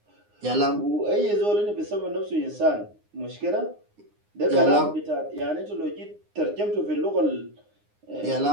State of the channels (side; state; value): left; late; 9.7 ms